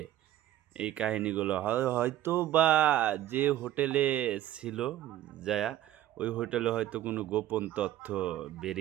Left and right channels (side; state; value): left; quieter; 13.1 dB